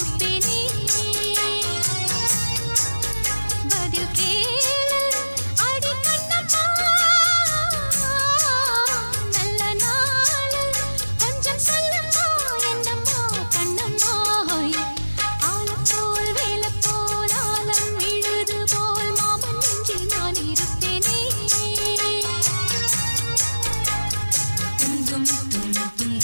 பதில் கேளு அடி கண்ணம்மா, நல்ல நாள் கொஞ்சம் சொல்லம்மா என்னம்மா கண்ணம்மா. ஆலப்போல் வேலப்போல் ஆலம் விழுது போல் மாமன் நெஞ்சில் நான் இருப்பேனே. துந்தும் துந்தும்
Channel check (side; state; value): both; inverted; correlation -1.00